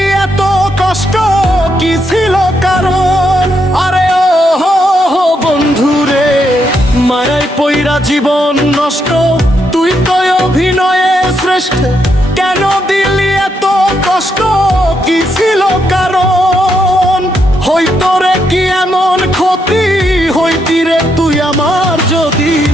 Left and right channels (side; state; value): both; normal; correlation 0.79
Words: এত কষ্ট, কি ছিল কারণ? আরে ও হো বন্ধুরে, মায়ায় পইরা জীবন নষ্ট, তুই তো অভিনয়ে শ্রেষ্ঠ। কেন দিলি এত কষ্ট, কি ছিল কারণ? হইতো রে কি এমন ক্ষতি, হইতি রে তুই আমার যদি।